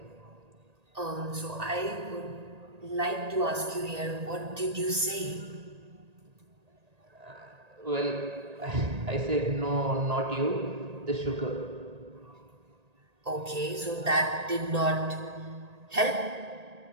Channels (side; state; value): left; late; 1.8 ms